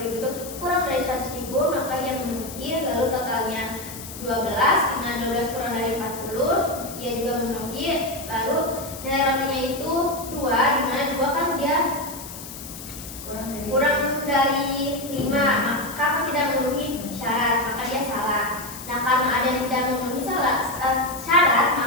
itu kurang dari 100.000, maka yang memenuhi. Lalu totalnya 12, dengan 12 kurang dari 40, ia juga memenuhi. Lalu nilai rotinya itu 2, dimana 2 kan dia kurang dari 5, maka tidak memenuhi syarat, maka dia salah. Nah, karena ada yang tidak memenuhi syarat,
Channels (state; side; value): noise; left; hiss, 12 dB below the sound